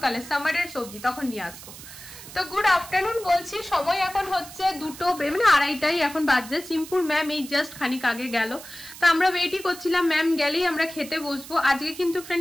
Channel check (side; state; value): right; noise; hiss, 15 dB below the sound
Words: সামারের সবজি, তখন নিয়ে আসবো। তো গুড আফটারনুন বলছি, সময় এখন হচ্ছে 2টো মানে 2:30 এখন বাজছে। সিম্পুল ম্যাম এই জাস্ট খানিক আগে গেল, তো আমরা ওয়েটই করছিলাম ম্যাম গেলেই আমরা খেতে বসবো। আজকে কিন্তু